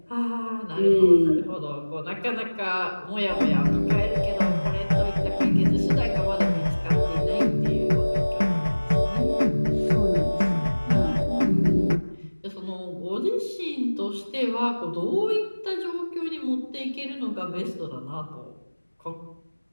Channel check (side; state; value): both; inverted; correlation -1.00